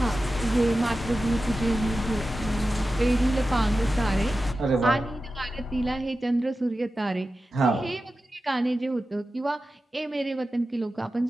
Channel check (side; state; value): both; normal; correlation 0.93